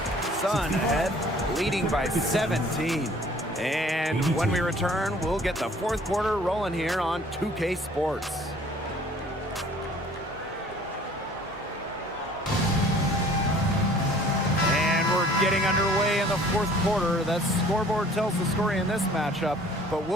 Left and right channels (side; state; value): both; normal; correlation 0.52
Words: Sun ahead, leading by 17. And when we return, we'll get the fourth quarter rolling here on 2K Sports. And we're getting underway in the fourth quarter. That scoreboard tells the story in this matchup, but